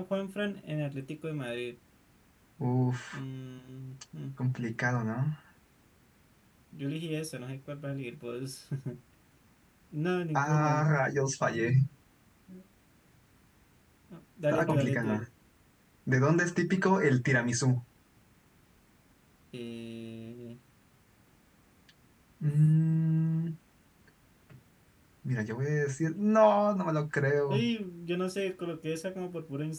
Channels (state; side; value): identical; both; correlation 1.00